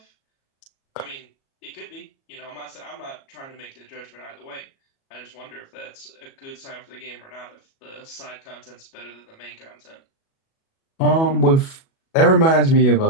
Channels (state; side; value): late; right; 37 ms